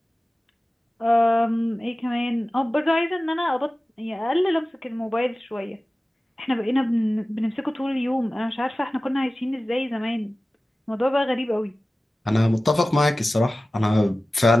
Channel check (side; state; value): both; normal; correlation 0.96